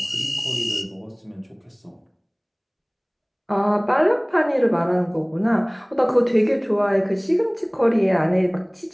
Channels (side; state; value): both; identical; correlation 1.00